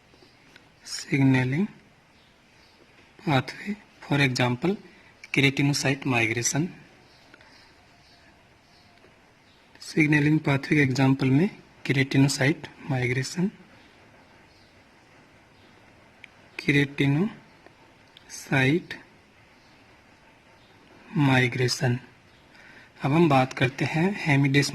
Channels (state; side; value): identical; both; correlation 1.00